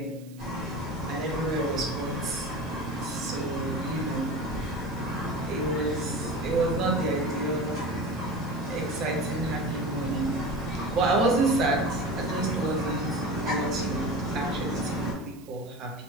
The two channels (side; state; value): right; noise; hiss, 25 dB below the sound